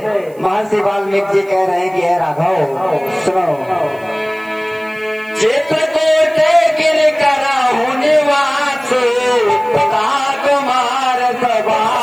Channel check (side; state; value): right; noise; hiss, 28 dB below the sound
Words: महर्षि वाल्मीकि जी कह रहे हैं कि हे राघव सुनो, चित्रकूट गिर करा होने वासु कुमार